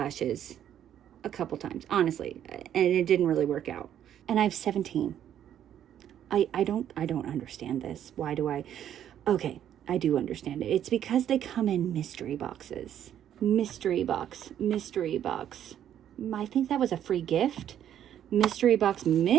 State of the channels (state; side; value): quieter; left; 10.3 dB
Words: a couple times, honestly, and it didn't really work out. And I have 17. I don't understand this. Why do I? Okay, I do understand it. It's because they come in mystery boxes. Mystery box. I think that was a free gift. Mystery box.